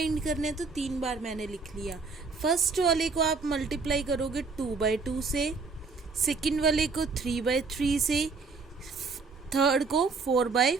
करने, तो 3 बार मैंने लिख लिया. फर्स्ट वाले को आप मल्टीप्लाई करोगे 2/2 से, सेकंड वाले को 3/3 से, थर्ड को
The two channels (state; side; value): quieter; left; 4.5 dB